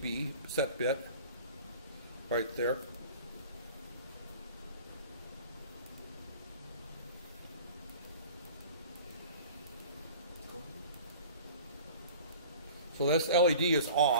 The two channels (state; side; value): inverted; both; correlation -0.43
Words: set bit, right there. So this LED is